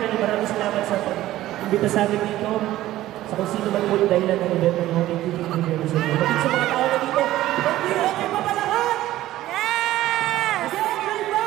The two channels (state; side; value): quieter; left; 15.0 dB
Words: maraming salamat sa pag-imbita sa amin dito. Sa kung sino man yung dahilan ng event ng Hongkong TV sa inyo. Bakit sa mga tao na dito, hindi okay pa ba lahat? Yes! Hindi okay ba?